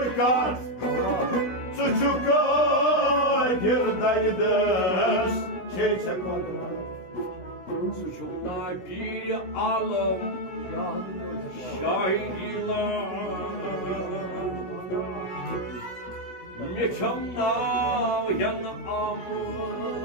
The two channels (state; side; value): late; right; 16 ms